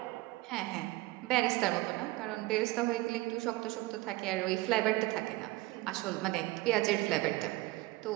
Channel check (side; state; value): left; quieter; 20.1 dB